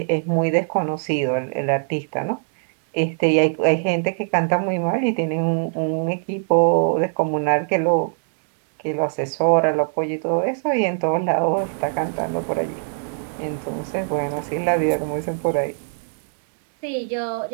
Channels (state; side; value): silent; left; digital silence